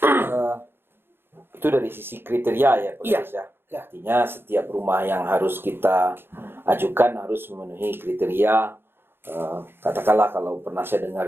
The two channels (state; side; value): late; left; 0.11 ms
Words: Itu dari sisi kriteria ya, Pak Iya. Gadis, ya. Artinya setiap rumah yang harus kita ajukan harus memenuhi kriteria. Katakanlah kalau pernah saya dengar